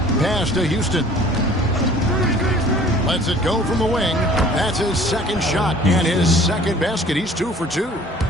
Pass to Houston. Lets it go from the wing. That's his second shot and his second basket. He's 2 for 2.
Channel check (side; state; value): both; normal; correlation 0.50